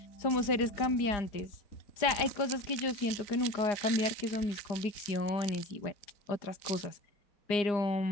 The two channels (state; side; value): late; right; 4.9 ms